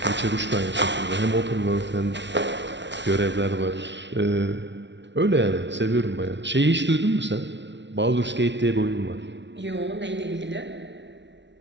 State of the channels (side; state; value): left; late; 0.52 ms